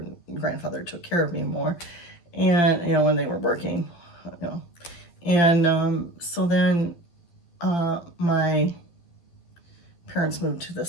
and grandfather took care of me more, and when they were working, and so then my parents moved to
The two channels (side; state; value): right; late; 12 ms